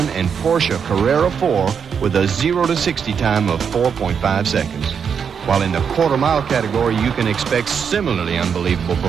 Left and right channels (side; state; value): left; quieter; 6.9 dB